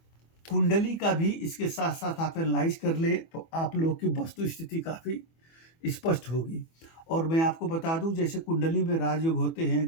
कुंडली का भी इसके साथ-साथ आप एनालाइज़ कर लें तो आप लोग की वस्तु स्थिति काफ़ी स्पष्ट होगी। और मैं आपको बता दूँ, जैसे कुंडली में राजयोग होते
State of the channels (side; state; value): right; late; 24 ms